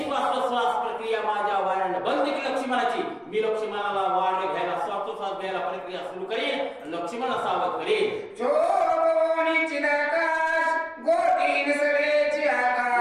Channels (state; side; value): identical; both; correlation 1.00